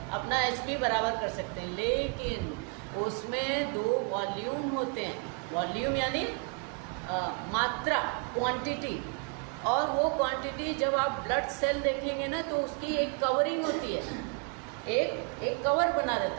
अपना HB बराबर कर सकते हैं, लेकिन उसमें 2 वॉल्यूम होते हैं। वॉल्यूम यानी मात्रा, क्वांटिटी, और वो क्वांटिटी जब आप ब्लड सेल देखेंगे ना तो उसकी एक कवरिंग होती है, एक कवर बना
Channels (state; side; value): quieter; left; 36.0 dB